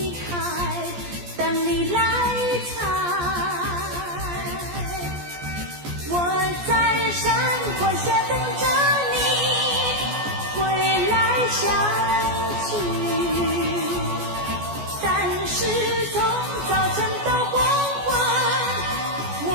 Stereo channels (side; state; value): left; late; 14 ms